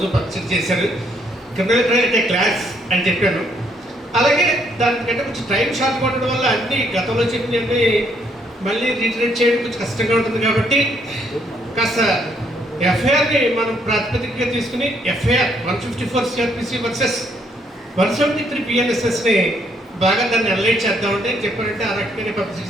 పరిచయం చేశారు. క్రిమినల్ అయితే క్లాస్ అని చెప్పాను. అలాగే దానికంటే కొంచెం టైం షార్ట్ ఉండడం వల్ల అన్ని గతంలో చెప్పినవి మళ్ళీ రీటరేట్ చేయడం కొంచెం కష్టంగా ఉంటుంది. కాబట్టి కాస్త ఎఫ్ఐఆర్ని మనం ప్రాతిపదికగా తీసుకుని ఎఫ్ఐఆర్ 154 CRPC వర్సెస్ 173 PNSSని బాగా దాన్ని అనలైజ్ చేద్దామంటే చెప్పారంటే ఆ రకంగానే పబ్లిసిటీ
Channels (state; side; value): normal; both; correlation 0.70